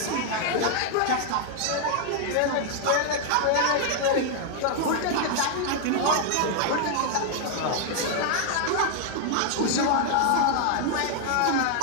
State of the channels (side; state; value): both; different; correlation 0.00